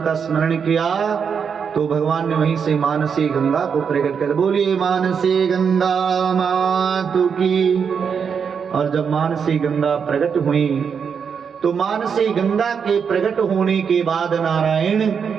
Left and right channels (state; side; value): quieter; left; 6.6 dB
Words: का स्मरण किया तो भगवान ने वहीं से मानसी गंगा को प्रकट कर, बोलिए मानसी गंगा मातु की। और जब मानसी गंगा प्रकट हुई तो मानसी गंगा के प्रकट होने के बाद नारायण